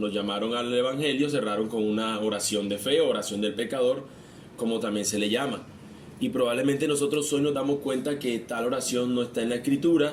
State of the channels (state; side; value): identical; both; correlation 1.00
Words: llamaron al evangelio, cerraron con una oración de fe, oración del pecador, como también se le llama. Y probablemente nosotros hoy nos damos cuenta que tal oración no está en la